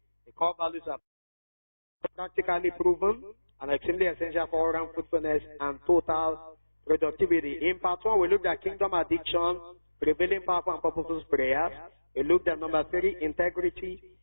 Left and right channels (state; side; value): inverted; both; correlation -1.00